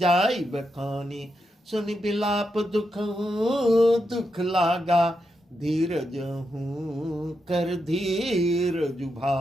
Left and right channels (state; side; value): normal; both; correlation 0.85